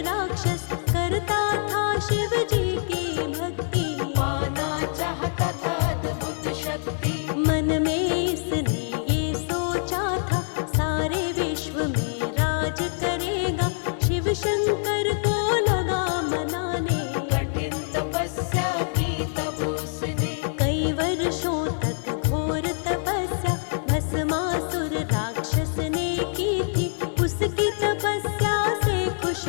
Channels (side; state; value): right; silent; 62 dB below the other